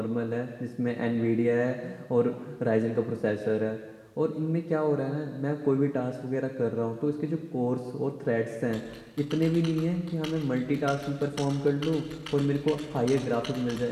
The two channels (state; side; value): identical; both; correlation 1.00